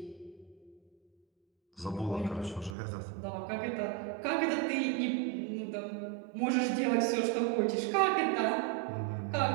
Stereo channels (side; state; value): left; drops out; at 2.8 s